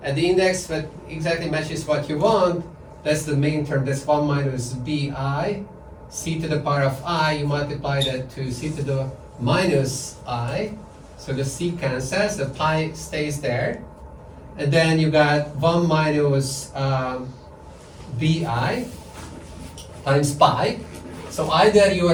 at the index that exactly matches what you want, that's the main term, that's 1 minus bi, c to the power of I, you multiply that to c to the minus I, so the c cancels, the pi stays there, and then you got 1 minus bi times pi, so either you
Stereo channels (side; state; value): both; identical; correlation 1.00